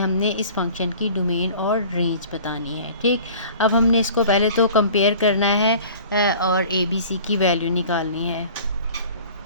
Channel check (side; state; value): both; inverted; correlation -0.45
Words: इस फंक्शन की डोमेन और रेंज बतानी है। ठीक, अब हमने इसको पहले तो कंपेयर करना है और ए बी सी की वैल्यू निकालनी है।